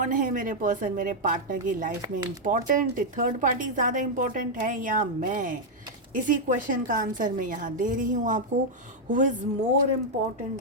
है मेरे पर्सन, मेरे पार्टनर की लाइफ में इम्पॉर्टेंट, थर्ड पार्टी ज़्यादा इम्पॉर्टेंट है या मैं। इसी क्वेश्चन का आंसर मैं यहाँ दे रही हूँ आपको। Who is more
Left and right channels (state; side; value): normal; both; correlation -0.02